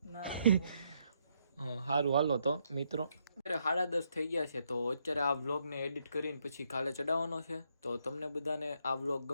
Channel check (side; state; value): both; inverted; correlation -0.75